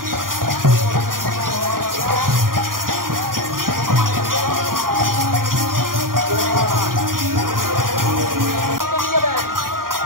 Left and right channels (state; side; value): late; left; 0.91 ms